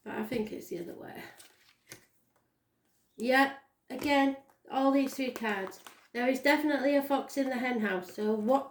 But I think it's the other way. Yeah, again, all these 3 cards. There is definitely a fox in the hen house, so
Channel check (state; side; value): identical; both; correlation 1.00